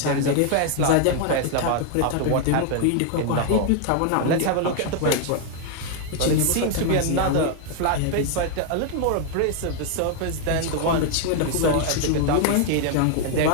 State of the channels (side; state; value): both; different; correlation 0.00